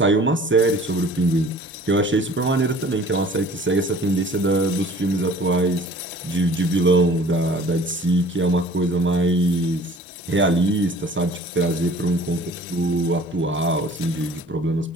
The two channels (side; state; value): both; normal; correlation 0.49